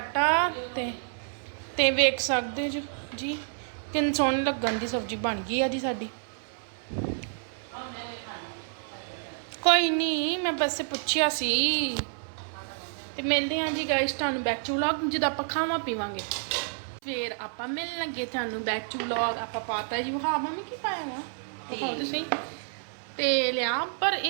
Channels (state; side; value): silent; left; 59 dB below the other